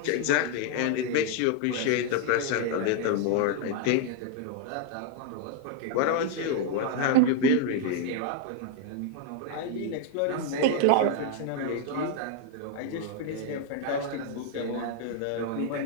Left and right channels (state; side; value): different; both; correlation 0.00